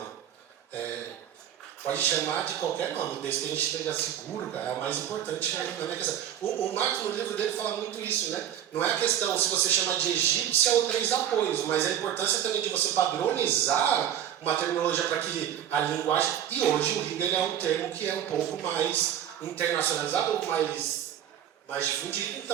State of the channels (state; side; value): quieter; left; 10.2 dB